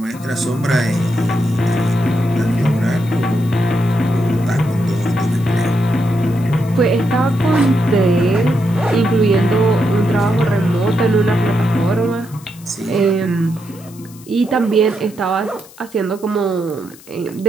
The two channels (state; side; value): noise; left; hiss, 23 dB below the sound